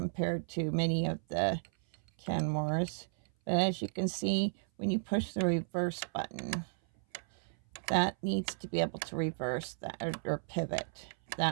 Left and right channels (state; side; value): silent; left; 55 dB below the other